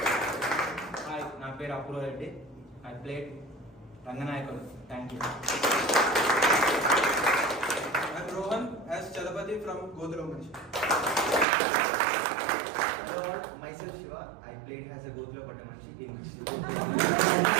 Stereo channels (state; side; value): drops out; left; at 11.5 s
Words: Hi, నా పేరు Apoorva Reddy. I played Ranganayakudu. Thank you. I'm Rohan as Chalapati from Godhra Manchi. Hello all, myself Shiva. I played as a Godhra Patamanchi in